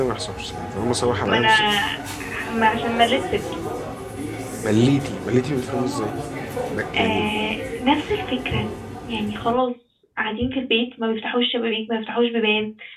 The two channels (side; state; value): both; identical; correlation 1.00